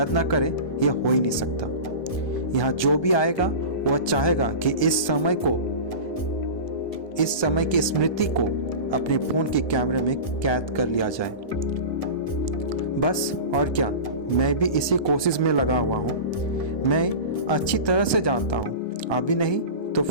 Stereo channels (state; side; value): late; right; 1.2 ms